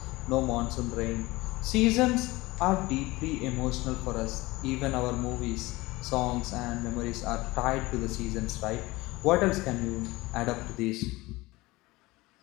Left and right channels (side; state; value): right; quieter; 20.7 dB